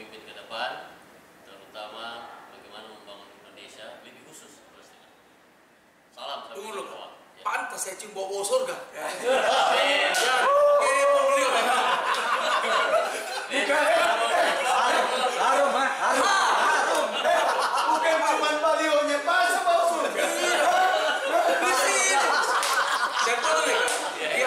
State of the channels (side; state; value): both; identical; correlation 1.00